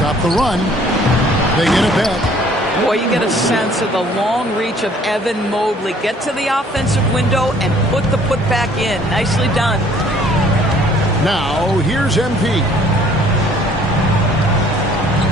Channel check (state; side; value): normal; both; correlation 0.57